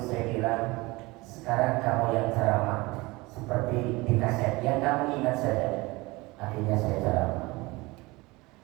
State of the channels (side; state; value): left; quieter; 22.6 dB